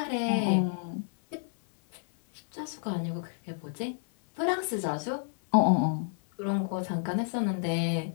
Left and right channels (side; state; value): right; silent; 58 dB below the other